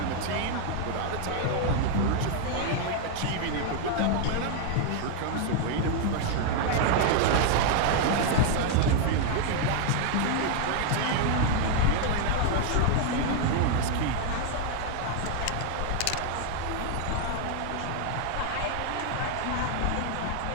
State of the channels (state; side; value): different; both; correlation 0.00